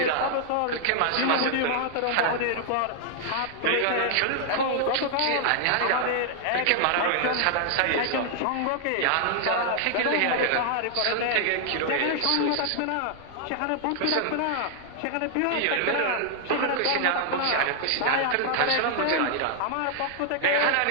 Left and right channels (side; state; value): both; different; correlation -0.01